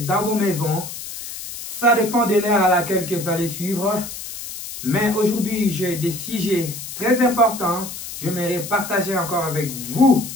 dans vos maisons. Ça dépend de l'heure à laquelle que vous allez suivre. Mais aujourd'hui, j'ai des sujets très importants. J'aimerais partager encore avec vous,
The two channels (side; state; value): left; noise; hiss, 10 dB below the sound